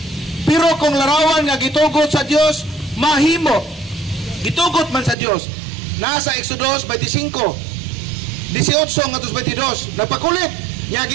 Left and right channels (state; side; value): drops out; left; at 5.2 s